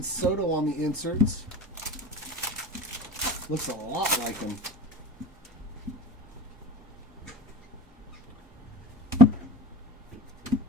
Soto on the inserts. Looks a lot like him.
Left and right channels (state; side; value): normal; both; correlation 0.35